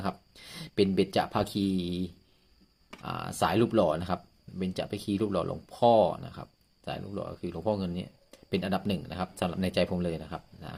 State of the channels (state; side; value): identical; both; correlation 1.00